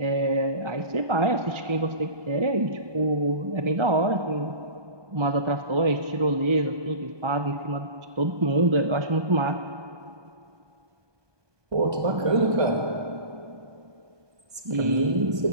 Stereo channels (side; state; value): left; late; 1.2 ms